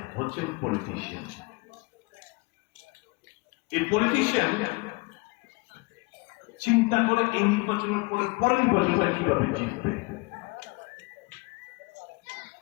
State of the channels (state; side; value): quieter; right; 26.5 dB